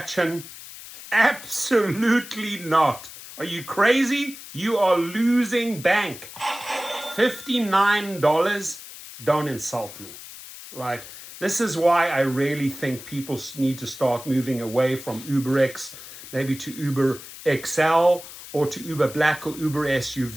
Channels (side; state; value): left; noise; hiss, 15 dB below the sound